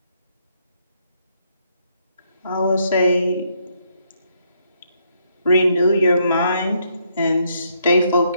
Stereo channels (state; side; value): inverted; both; correlation -0.73